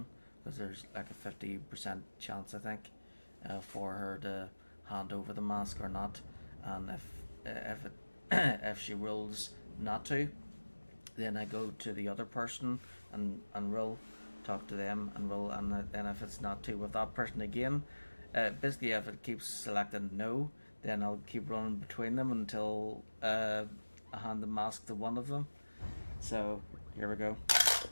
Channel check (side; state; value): both; inverted; correlation -1.00